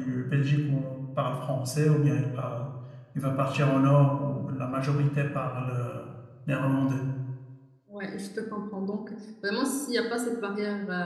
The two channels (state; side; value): identical; both; correlation 1.00